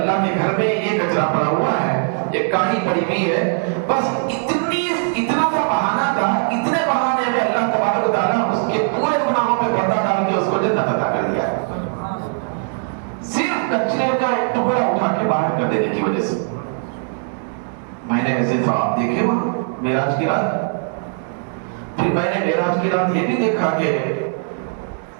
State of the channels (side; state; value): left; silent; 61 dB below the other